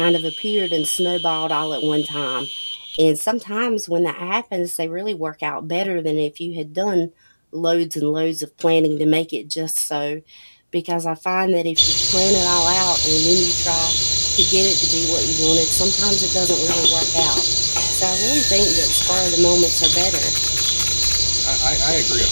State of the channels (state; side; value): inverted; both; correlation -1.00